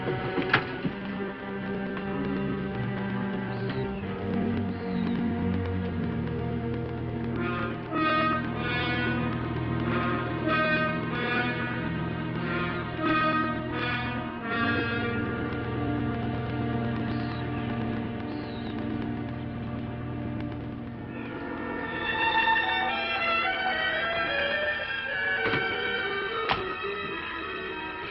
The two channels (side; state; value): both; identical; correlation 1.00